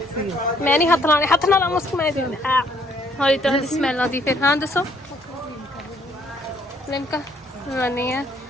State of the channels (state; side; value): normal; both; correlation 0.65